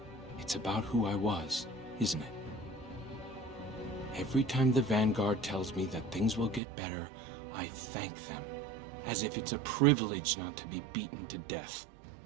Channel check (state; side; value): drops out; left; at 6.6 s